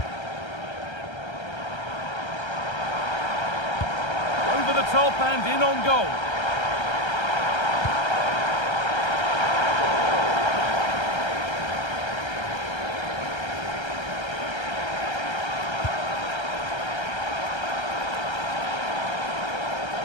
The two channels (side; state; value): right; late; 1.3 ms